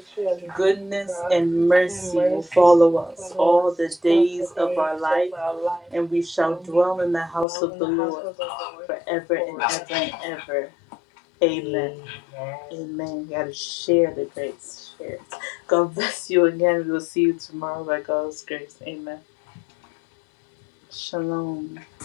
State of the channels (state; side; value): drops out; right; at 7.5 s